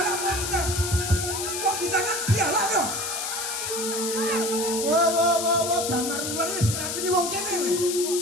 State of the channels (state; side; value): noise; left; hiss, 3 dB below the sound